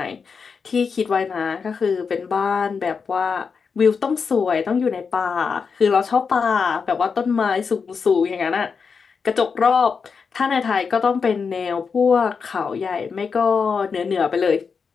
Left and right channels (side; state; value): right; quieter; 5.6 dB